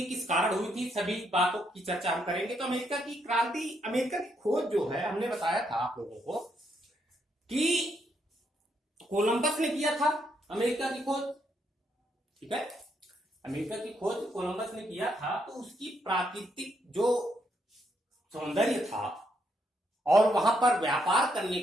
किस कारण हुई थी, सभी बातों की चर्चा हम करेंगे। तो अमेरिका की क्रांति, अमेरिका की खोज जो है, हमने बताया था आप लोगों को कि कोलंबस ने किया था अमेरिका की खोज। ठीक है, अमेरिका की खोज कोलंबस ने किया था, तो उसकी प्राकृतिक जो सौंदर्य था और वहां पर व्यापार करने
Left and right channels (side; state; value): both; normal; correlation 0.76